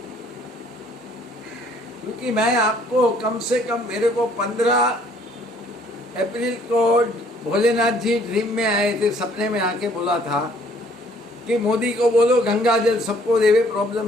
क्योंकि मैं आपको कम से कम, मेरे को 15 अप्रैल को भोलेनाथ जी ड्रीम में आए थे, सपने में आके बोला था कि मोदी को बोलो गंगा जल सबको देवे,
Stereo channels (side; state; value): both; normal; correlation 0.61